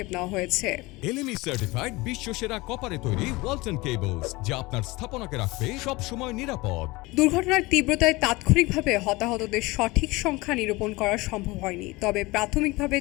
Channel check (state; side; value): quieter; right; 22.4 dB